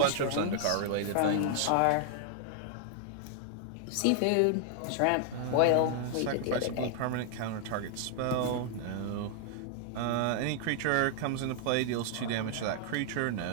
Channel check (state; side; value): different; both; correlation 0.00